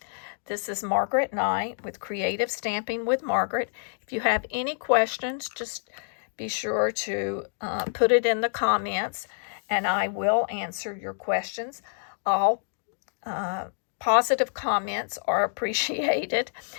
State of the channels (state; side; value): silent; right; digital silence